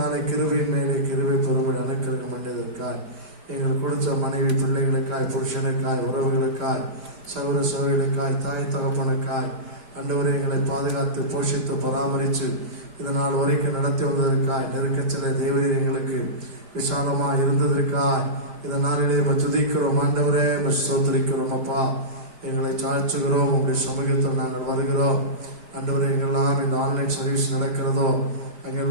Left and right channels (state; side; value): late; left; 5.1 ms